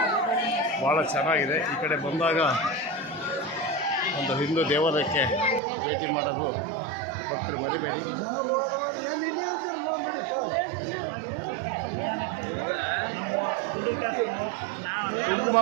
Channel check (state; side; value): drops out; left; at 5.6 s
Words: ಭಾಳ ಚೆನ್ನಾಗಿದೆ. ಈ ಕಡೆ ಬಂದಾಗ ಒಂದು ಹಿಂದೂ ದೇವಾಲಯಕ್ಕೆ ಭೇಟಿ ಮಾಡೋದು ಭಕ್ತರು ಮರಿಬೇಡಿ. ಕುಂಕುಮ